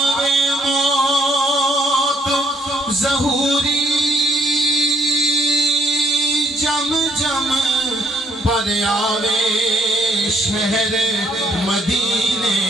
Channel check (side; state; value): both; normal; correlation 0.68